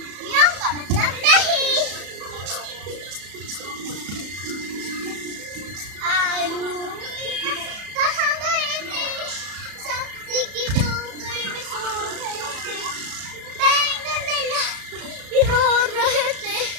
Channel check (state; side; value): late; left; 34 ms